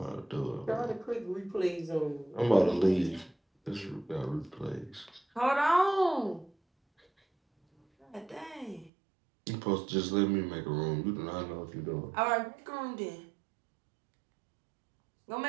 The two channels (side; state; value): left; drops out; at 8.9 s